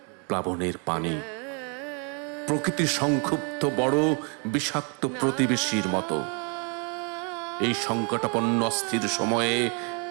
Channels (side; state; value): left; quieter; 36.6 dB